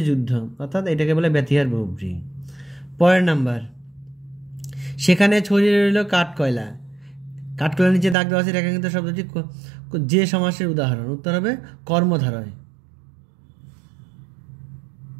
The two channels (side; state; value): left; drops out; at 8.2 s